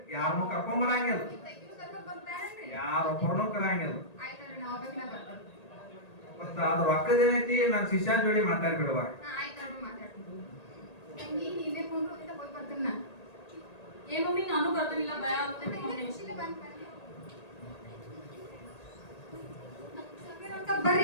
ಯಾರನ್ನೂ ಕರ್ಕೊಂಡ್ ಬರಂಗಿಲ್ಲ. ನೀವು ತೆಗಿದು ಕರ್ಕೊಂಡ್ ಬಂದ್ಬಿಟ್ಟಾರೇನ್ರಿ? ಯಾರೊಬ್ಬರನ್ನೂ ಕರಂಗಿಲ್ಲ. ಆಯ್ತಲ್ರಿ, ನಾ ಒಬ್ಬಾಕಿನ ಬರ್ತೀನಿ. ಮತ್ತ ಅದ್ರ ರೊಕ್ಕದೇನೈತಿ ನನ್ ಶಿಷ್ಯನ ಜೋಡಿ ಮಾತಾಡ್ಬಿಡುವ. ಹಾ, ಆಯ್ತಲ್ರಿ, ಮಾತಾಡ್ತೀನಿ. ತಂಗಿ ನೀವೇ ಕುಂಡ್ರು ಅಂತ ಹೋಗಿ ಬರ್ತೀನಿ ನಾ. ಏ ಮಮ್ಮಿ ನಾನು ಬರ್ತಿಲ್ಲ, ಭಯ ಆಗ್ತೈತಿ ಮಮ್ಮಿ. ಖುಷಿಲೇ ಬಂದ್ ಬರ್ರಿ. ಬರ್ರಿ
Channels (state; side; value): late; right; 1.8 ms